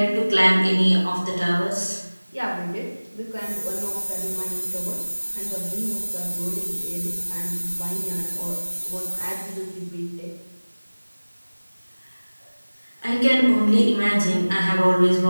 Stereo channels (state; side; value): inverted; both; correlation -1.00